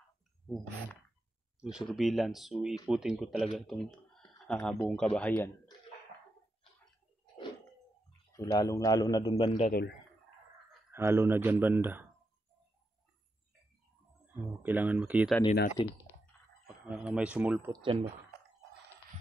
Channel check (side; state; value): both; normal; correlation 0.85